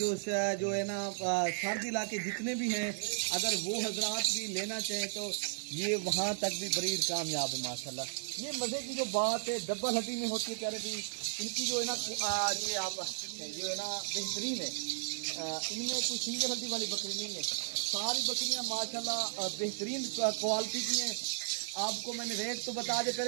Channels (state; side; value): silent; left; digital silence